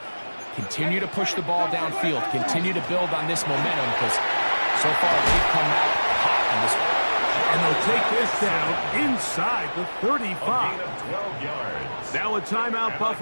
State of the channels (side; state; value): both; inverted; correlation -1.00